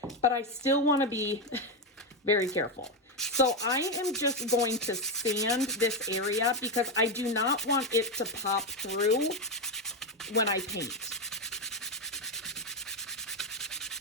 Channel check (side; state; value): both; normal; correlation 0.08